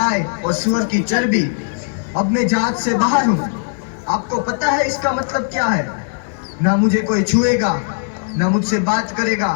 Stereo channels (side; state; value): right; silent; 67 dB below the other